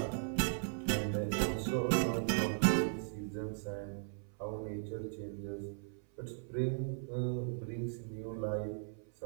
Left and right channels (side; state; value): left; silent; 53 dB below the other